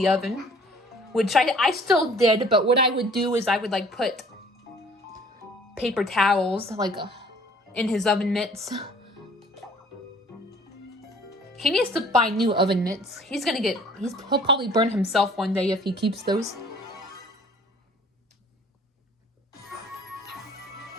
oven, which I still did, but what I would do is I would like put paper towels like in his oven mitts. He needs to buy new oven mitts. He'll probably burn himself one day if he keeps those.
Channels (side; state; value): both; normal; correlation 0.54